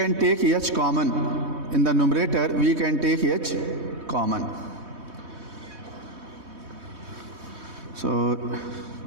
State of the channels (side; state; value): left; late; 3.2 ms